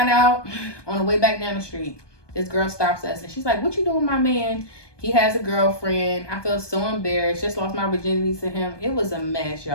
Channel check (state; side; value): late; right; 1.2 ms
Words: out, on the way back down the street, this girl stops us and she's like, what you doing, my man? He has a girlfriend. I felt so embarrassed. Just lost my virginity to him. It was a mess,